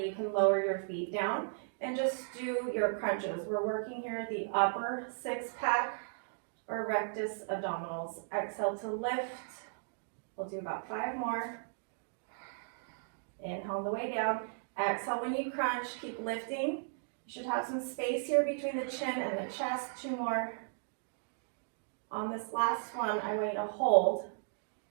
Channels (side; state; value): left; silent; digital silence